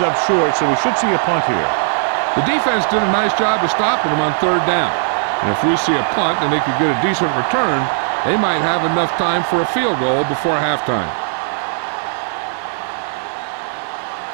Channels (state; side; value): silent; left; digital silence